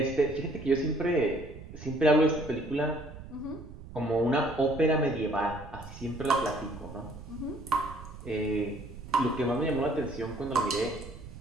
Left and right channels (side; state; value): right; noise; rumble, 14 dB below the sound